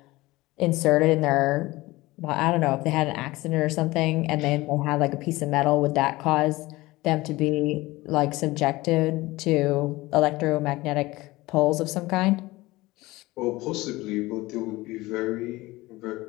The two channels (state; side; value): quieter; right; 19.9 dB